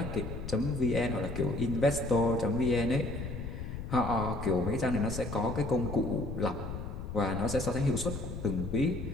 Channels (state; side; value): noise; left; rumble, 7 dB below the sound